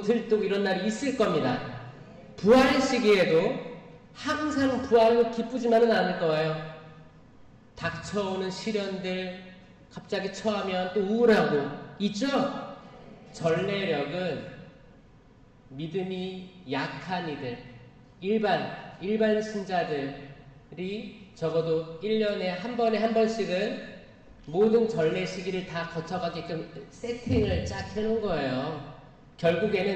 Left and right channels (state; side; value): identical; both; correlation 1.00